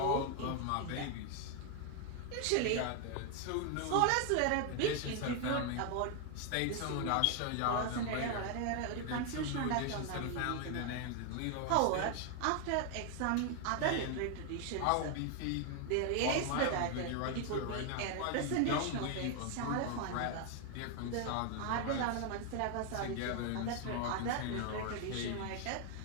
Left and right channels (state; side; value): different; both; correlation 0.00